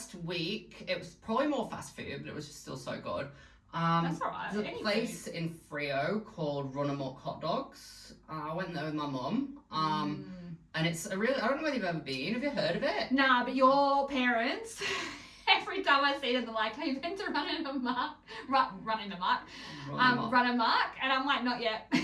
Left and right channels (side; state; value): both; identical; correlation 1.00